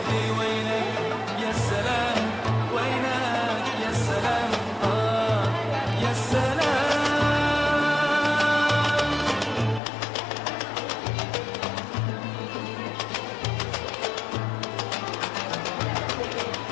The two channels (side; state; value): right; drops out; at 9.8 s